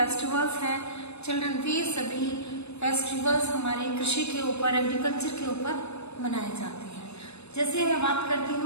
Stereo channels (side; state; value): right; late; 0.80 ms